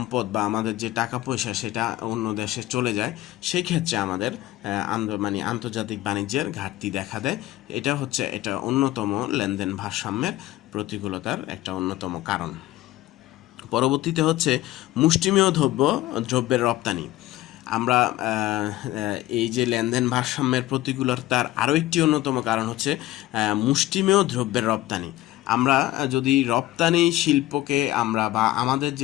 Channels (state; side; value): quieter; right; 15.9 dB